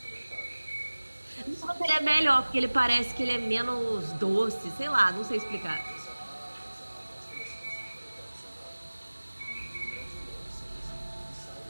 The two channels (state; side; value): inverted; both; correlation -1.00